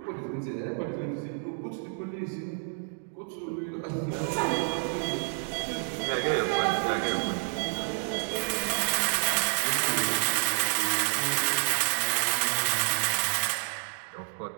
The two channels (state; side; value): silent; left; 58 dB below the other